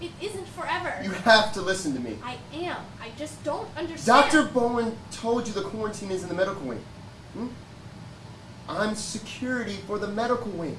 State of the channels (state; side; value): identical; both; correlation 1.00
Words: isn't forever. You have to listen to me. I am. I just don't understand. Dr. Bowen told you the quarantine is in the medical wing. I'm security for the medical wing.